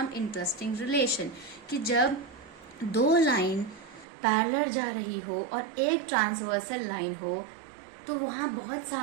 interesting relation। कि जब दो लाइन पैरेलल जा रही हो और एक ट्रांसवर्सल लाइन हो, तो वहाँ बहुत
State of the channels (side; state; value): left; drops out; at 4.0 s